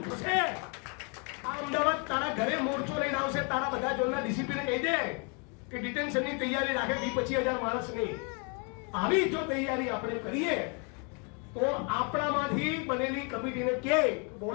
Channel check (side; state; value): right; quieter; 35.8 dB